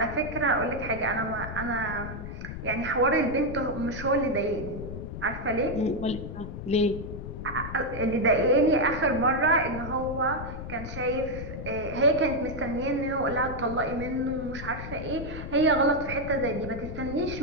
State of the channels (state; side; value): noise; left; rumble, 8 dB below the sound